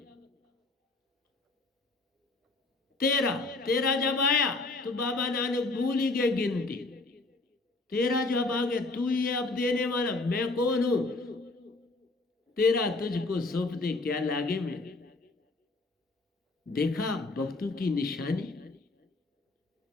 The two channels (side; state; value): right; quieter; 3.3 dB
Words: 13 जब आया तो बाबा नानक भूल ही गए गिनती। 13 जब आ गए, तू ही है अब देने वाला, मैं कौन हूं, 13 तुझको सौंप दे क्या लागे मेरे। देखा भक्तों की निशानी।